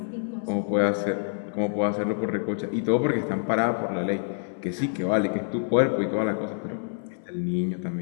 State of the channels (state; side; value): silent; right; 59 dB below the other